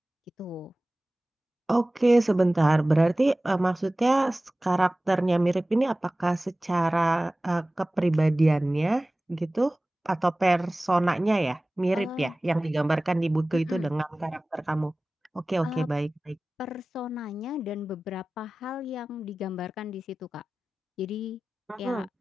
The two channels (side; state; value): both; normal; correlation 0.97